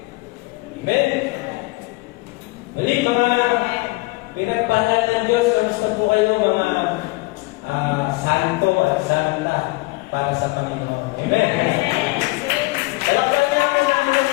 Amen. Muli mga pinagpahala ng Diyos, kamusta po kayo mga santo at santa para sa Panginoon. Amen.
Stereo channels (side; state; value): right; quieter; 23.6 dB